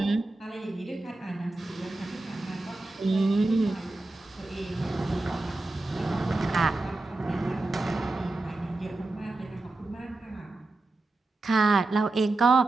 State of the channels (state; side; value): quieter; left; 3.1 dB